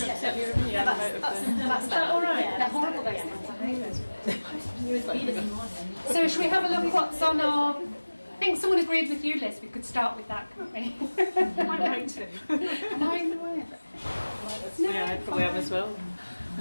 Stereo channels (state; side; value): inverted; both; correlation -1.00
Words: Yeah, that's all right? Yeah, they're horrible, those things. I hate those. So should we have a look what's on our... I think someone agreed with you, Liz. We could start with that, couldn't we? I'm going to. Am I in the way of it? No, yeah, I probably am as well.